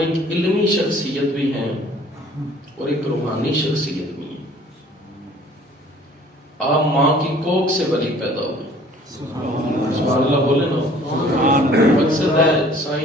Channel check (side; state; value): both; normal; correlation 0.53